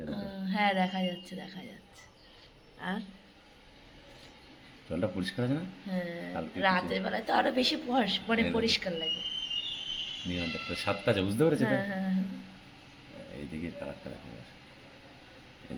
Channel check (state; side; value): identical; both; correlation 1.00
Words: হ্যাঁ, দেখা যাচ্ছে। আর জলটা পরিষ্কার আছে না? হ্যাঁ, রাতের বেলায় তো আরো বেশি পরিষ্কার লাগে। নিয়ন টেক্টর 7টা আছে, বুঝতে পেরেছো? হ্যাঁ। এইদিকে কালারটা দেখা যাচ্ছে, এই